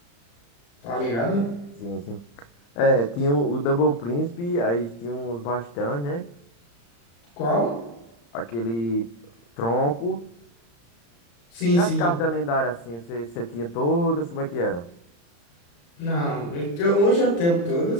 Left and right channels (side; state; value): right; late; 35 ms